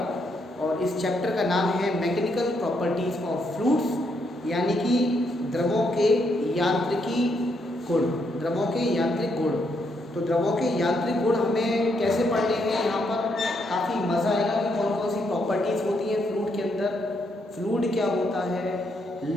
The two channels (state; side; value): normal; both; correlation 0.76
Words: और इस चैप्टर का नाम है मैकेनिकल प्रॉपर्टीज़ ऑफ फ्लूइड्स, यानी कि द्रवों के यांत्रिकी गुण, द्रवों के यांत्रिक गुण। तो द्रवों के यांत्रिक गुण हमें कैसे पढ़ने हैं, यहाँ पर काफ़ी मज़ा आएगा कि कौन कौन सी प्रॉपर्टीज़ होती हैं फ्लूइड के अंदर, फ्लूइड क्या होता है,